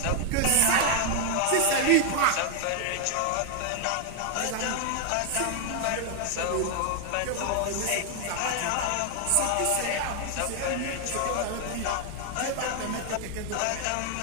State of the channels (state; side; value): different; both; correlation 0.00